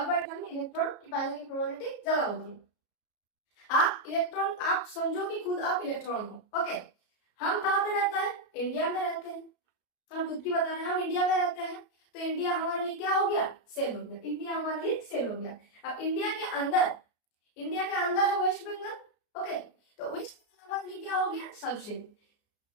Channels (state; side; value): late; right; 33 ms